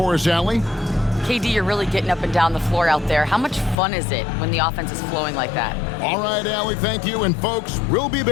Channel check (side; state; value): right; drops out; at 3.8 s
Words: us, Allie? KD, you're really getting up and down the floor out there. How much fun is it when the offense is flowing like that? All right, Allie, thank you. And folks, we'll be